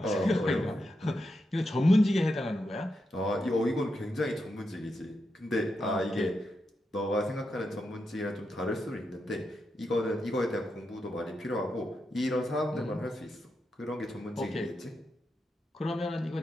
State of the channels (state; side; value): normal; both; correlation 0.86